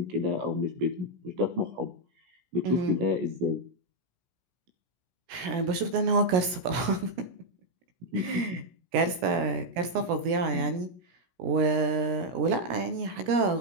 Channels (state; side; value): late; left; 16 ms